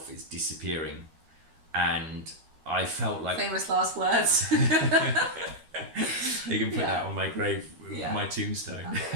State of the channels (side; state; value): left; late; 13 ms